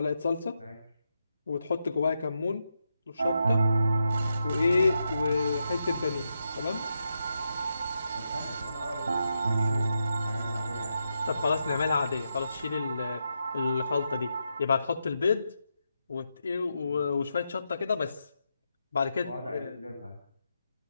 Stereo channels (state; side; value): inverted; both; correlation -0.84